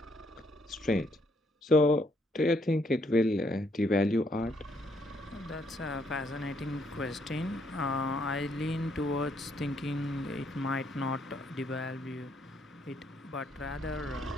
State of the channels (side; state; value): both; normal; correlation 0.71